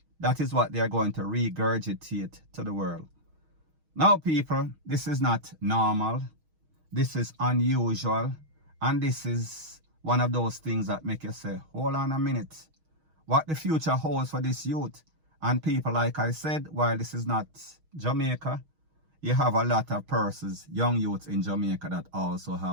That is what they are going to regurgitate to the world. Now people, this is not normal. This is unusual. And this is one of those things that make you say, hold on a minute. What the future holds for this youth. And people, like I said, while this is not Jamaica, you have a lot of persons, young youths in Jamaica that also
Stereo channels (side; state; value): left; late; 6.3 ms